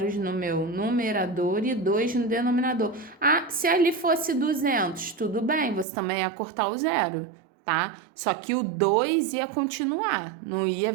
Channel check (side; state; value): left; drops out; at 5.9 s